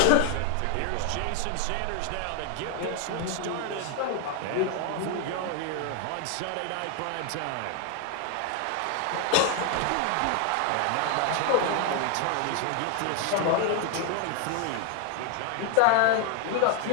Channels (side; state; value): both; different; correlation 0.01